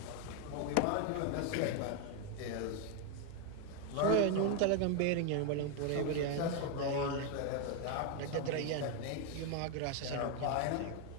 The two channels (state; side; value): different; both; correlation 0.01